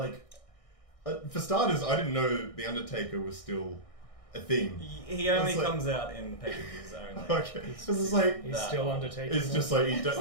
for starters, I didn't know The Undertaker was still a thing. He only comes out in pay-per-views only. Okay. This is like... He's still Undertaker. It's just like, does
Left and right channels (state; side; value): late; right; 1.6 ms